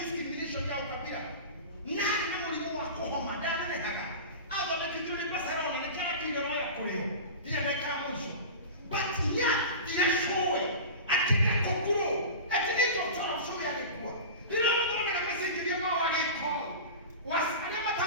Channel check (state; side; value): inverted; both; correlation -0.30